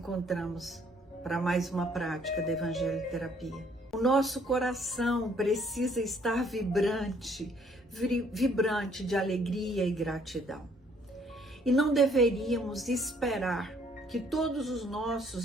para mais uma prática da Evangelho Terapia. O nosso coração precisa estar vibrante de alegria e gratidão. E não deveríamos esperar que todos os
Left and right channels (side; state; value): both; normal; correlation 0.64